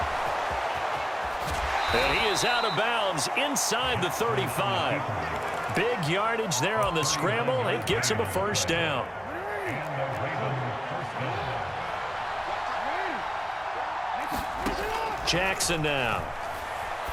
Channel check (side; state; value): both; identical; correlation 1.00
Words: And he is out of bounds inside the 35. Big yardage there on the scramble. It gets him a first down. Jackson now.